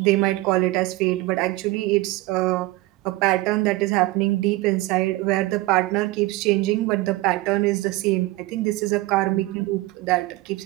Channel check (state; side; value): quieter; left; 19.1 dB